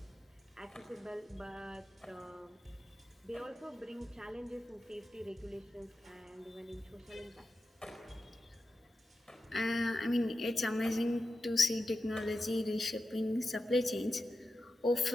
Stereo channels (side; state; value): both; normal; correlation 0.92